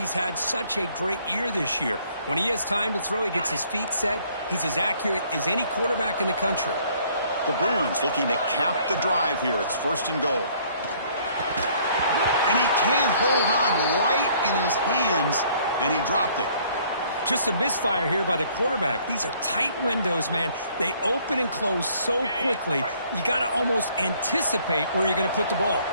had such a great year this year. When he has time to throw, he gets his feet set. He's as accurate as any quarterback in the country. The Bruins looking to cap the drive here. It's 1st and goal. And he can hold on right in his hands, and he dropped it. Just a misfire here by the quarterback. These are tight windows, man. They open and close so quickly. You got to almost anticipate where you're going to put the ball.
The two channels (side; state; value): both; inverted; correlation -0.61